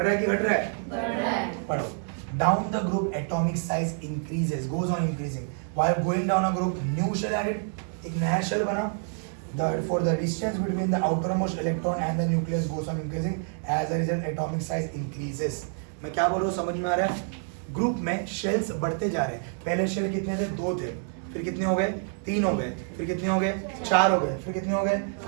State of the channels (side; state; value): left; silent; 57 dB below the other